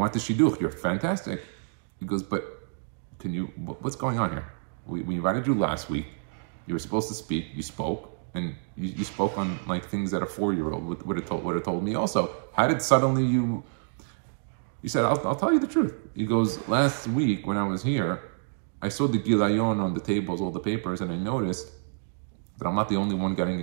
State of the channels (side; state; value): left; silent; digital silence